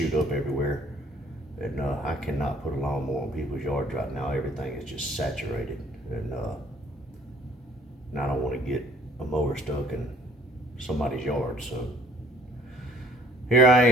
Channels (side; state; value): both; normal; correlation 0.58